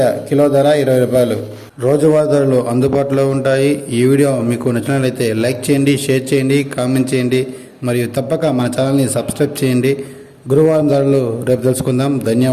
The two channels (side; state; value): both; identical; correlation 1.00